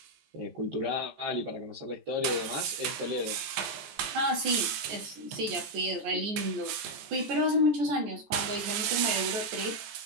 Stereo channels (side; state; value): left; late; 15 ms